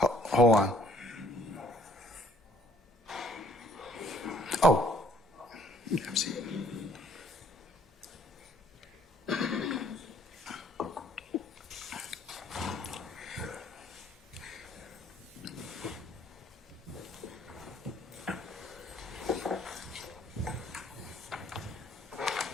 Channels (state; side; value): normal; both; correlation 0.60